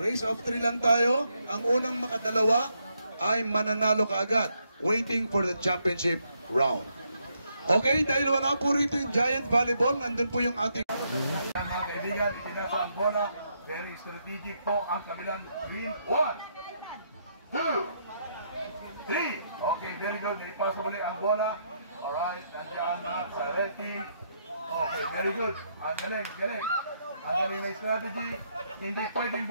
of 3 lang tayo. Ang unang makadalawa ay mananalo kaagad. Waiting for the championship round. Okay? Dahil wala po rito yung Giant Volleyball, nandun po yung ating... Mga kaibigan, itinasa ang bola. Very strategic po ang kabilang green. 1, 2, 3. Okay, very good. Ipasa muli ang bola. Alright, nandiyan na sa red team. Okay, very good. Ang galing, galing. Ang galing na strategy. Hindi pwedeng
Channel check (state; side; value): inverted; both; correlation -0.76